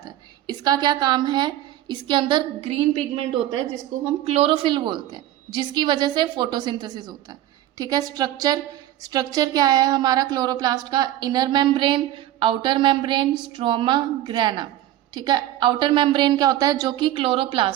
है। इसका क्या काम है, इसके अंदर ग्रीन पिगमेंट होता है जिसको हम क्लोरोफिल बोलते हैं, जिसकी वजह से फोटोसिंथेसिस होता है, ठीक है। स्ट्रक्चर क्या है हमारा क्लोरोप्लास्ट का, inner membrane, outer membrane, stroma, grana, ठीक है। आउटर मेम्ब्रेन क्या होता है, जो कि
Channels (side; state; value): left; quieter; 13.5 dB